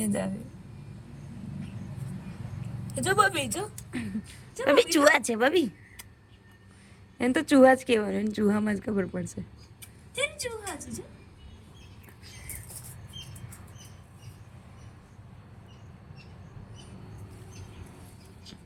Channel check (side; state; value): both; identical; correlation 1.00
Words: જ આવે જો બબી જો બબી ચૂહા છે બબી એને તો ચૂહા જ કહેવાનું એને ચૂહામાં જ ખબર પડશે તેમ ચૂહા છે જો